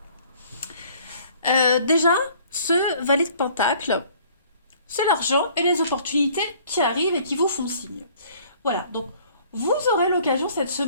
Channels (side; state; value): both; inverted; correlation -0.56